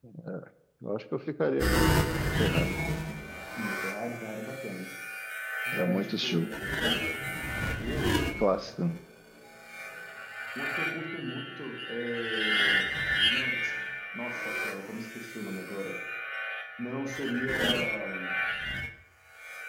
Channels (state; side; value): identical; both; correlation 1.00